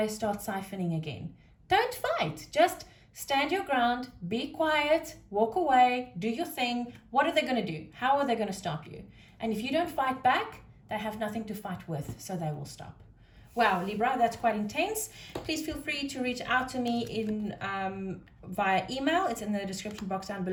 start siphoning again. Don't fight. Just stand your ground, be quiet, walk away, do your thing. What are they going to do? How are they going to stop you? And if you don't fight back, they have nothing to fight with, so they will stop. Wow, Libra, that's quite intense. Please feel free to reach out to me via email. It's in the description box down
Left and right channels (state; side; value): identical; both; correlation 1.00